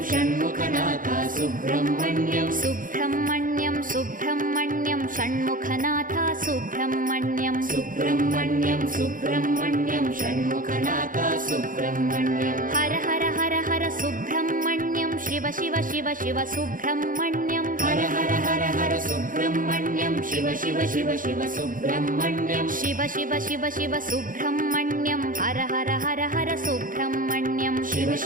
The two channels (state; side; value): late; left; 0.39 ms